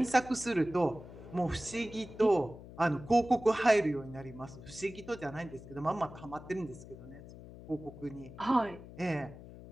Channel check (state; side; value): noise; left; hum, 16 dB below the sound